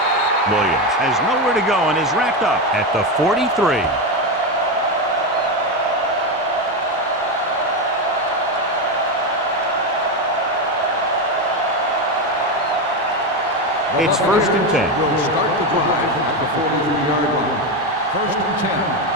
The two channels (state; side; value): normal; both; correlation 0.12